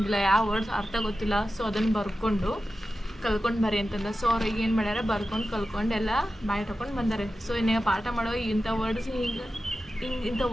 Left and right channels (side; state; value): both; normal; correlation 0.93